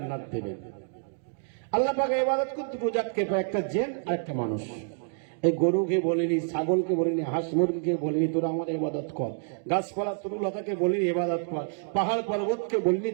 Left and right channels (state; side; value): silent; left; digital silence